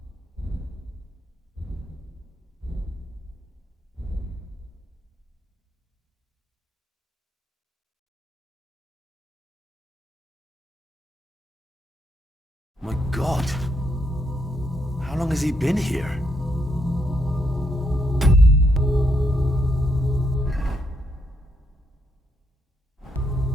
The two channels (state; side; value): normal; both; correlation 0.77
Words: My God. How long has he been here?